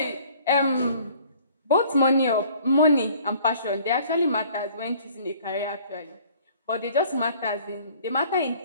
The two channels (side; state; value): both; inverted; correlation -0.54